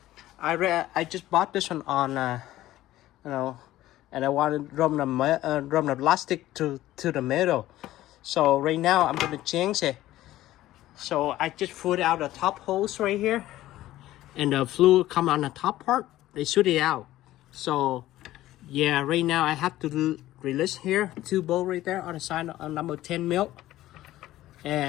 I just bought this one on and I wanted to run the plastic to the middle. So right now I'm going to change it. So I just put out the top hose right here, and the fluid come on the top part. They shoot it out. So yeah, right now I have to release here 2 bolts right there on the side on number 10 mil.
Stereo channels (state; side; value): quieter; right; 15.1 dB